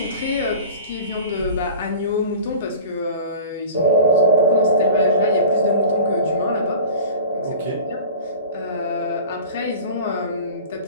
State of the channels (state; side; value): inverted; both; correlation -0.39